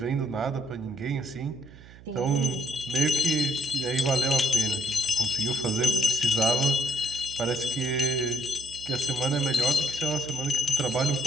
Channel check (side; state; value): right; noise; hum, 20 dB below the sound